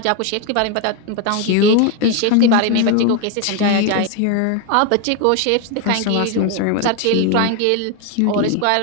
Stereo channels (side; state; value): both; different; correlation 0.01